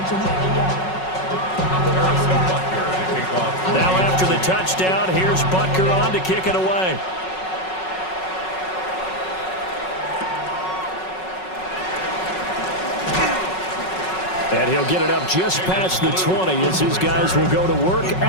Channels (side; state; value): right; late; 5.4 ms